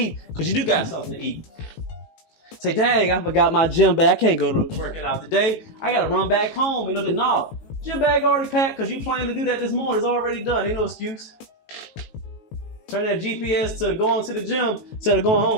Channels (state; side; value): late; right; 18 ms